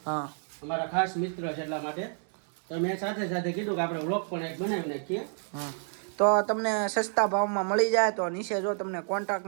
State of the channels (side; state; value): left; silent; 58 dB below the other